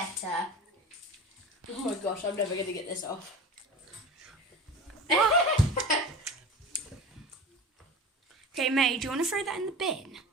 Oh my gosh, I'm never going to get this off. Okay, May, do you want to throw that in the bin?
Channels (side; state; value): both; normal; correlation 0.34